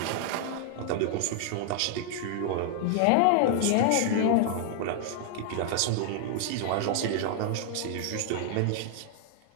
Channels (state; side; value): different; both; correlation 0.00